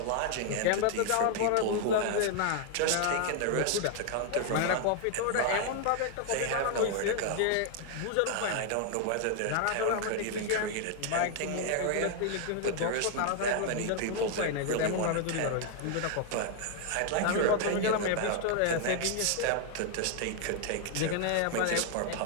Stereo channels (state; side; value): different; both; correlation 0.00